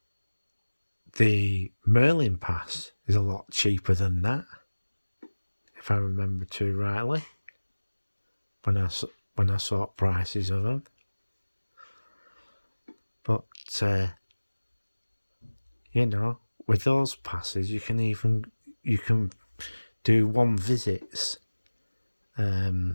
the Merlin pass is a lot cheaper than that, if I remember too rightly, when I saw prices of them. But with those passes, you can do one visits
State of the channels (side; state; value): both; inverted; correlation -1.00